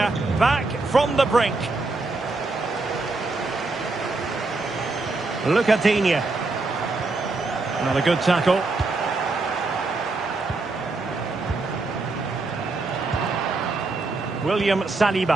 back from the brink. Look at Digne. Another good tackle. William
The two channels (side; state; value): left; quieter; 3.5 dB